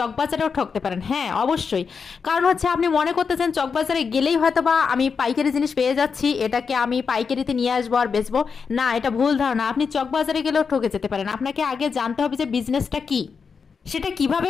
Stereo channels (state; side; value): quieter; right; 5.7 dB